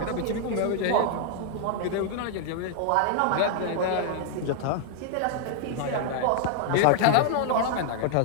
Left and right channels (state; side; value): different; both; correlation 0.00